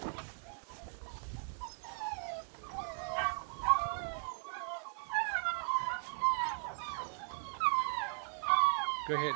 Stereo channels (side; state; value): left; silent; 53 dB below the other